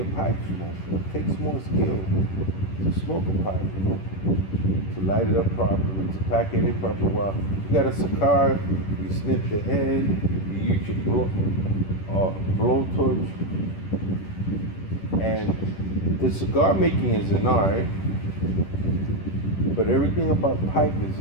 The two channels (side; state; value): right; late; 10 ms